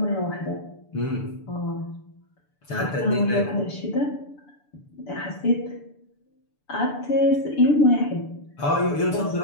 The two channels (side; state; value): right; late; 6.9 ms